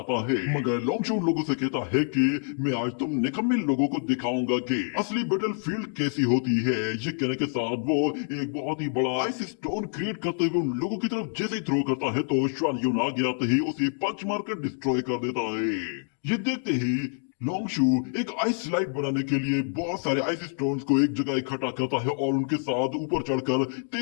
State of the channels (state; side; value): silent; right; 60 dB below the other